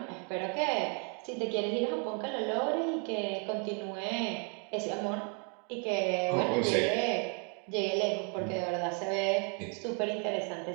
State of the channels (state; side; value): quieter; left; 38.4 dB